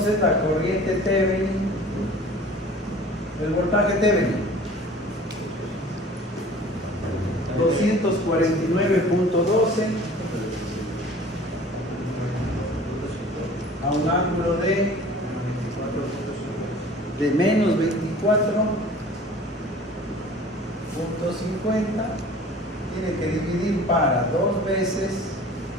la corriente Thevenin, el voltaje Thevenin, 249.12 a un ángulo de menos 24.50, tiene que dividir para 2 veces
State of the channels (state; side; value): normal; both; correlation 0.45